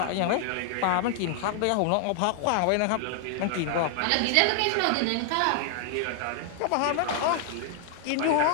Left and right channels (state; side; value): different; both; correlation -0.01